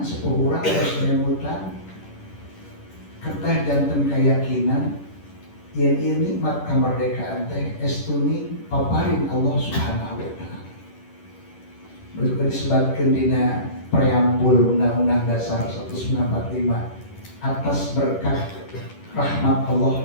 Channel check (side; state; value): right; late; 10 ms